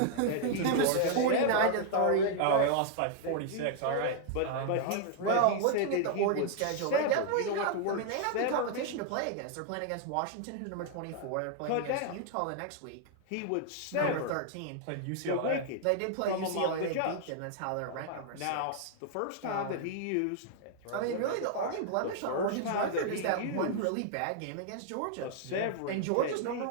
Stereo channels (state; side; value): different; both; correlation 0.00